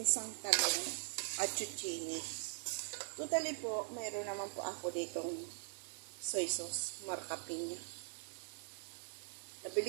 talong at zucchini. Totally po, mayroon naman po ako ditong soy sauce, marka Piña.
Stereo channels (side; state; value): left; silent; digital silence